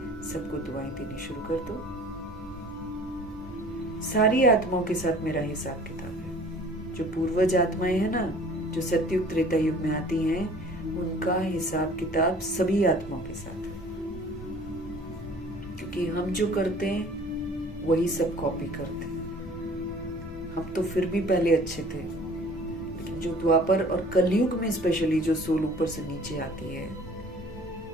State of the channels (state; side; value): normal; both; correlation 0.49